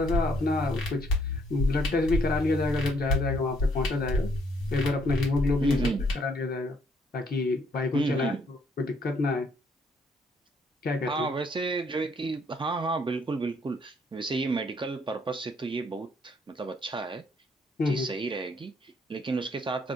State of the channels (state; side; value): normal; both; correlation 0.68